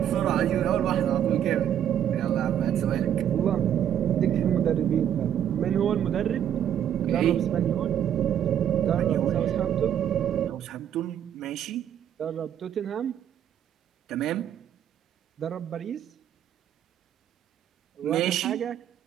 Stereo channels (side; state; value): left; quieter; 9.9 dB